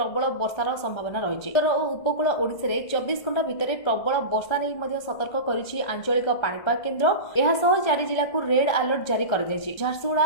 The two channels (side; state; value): right; late; 1.7 ms